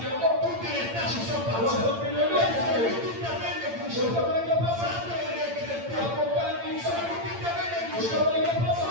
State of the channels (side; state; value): left; late; 8.8 ms